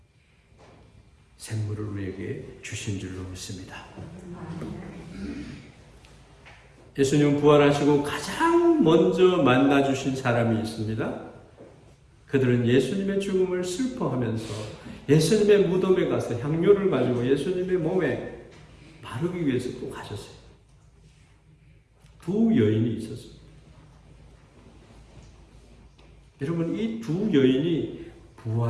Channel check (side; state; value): both; identical; correlation 1.00